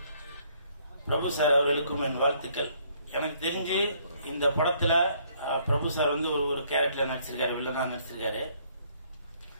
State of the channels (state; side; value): inverted; both; correlation -0.65